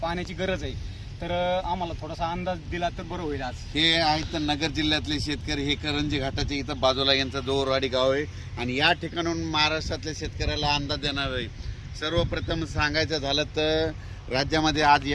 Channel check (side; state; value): both; identical; correlation 1.00